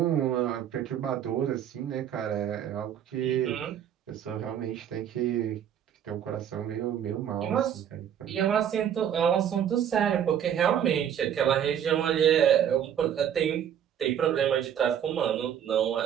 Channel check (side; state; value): left; quieter; 9.4 dB